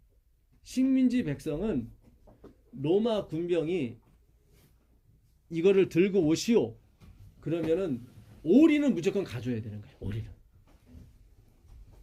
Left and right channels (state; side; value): identical; both; correlation 1.00